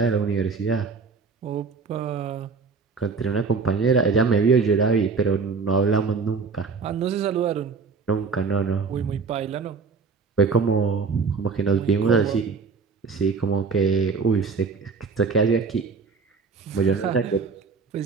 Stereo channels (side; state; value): left; quieter; 4.9 dB